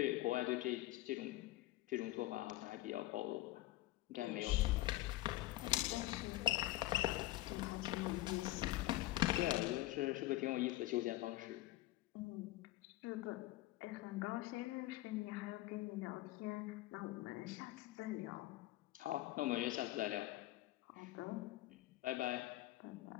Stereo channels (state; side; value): quieter; right; 17.1 dB